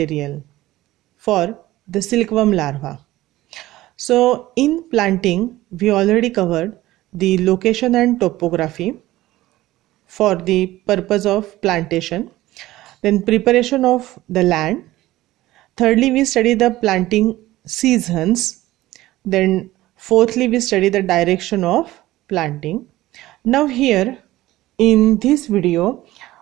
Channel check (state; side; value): quieter; left; 16.5 dB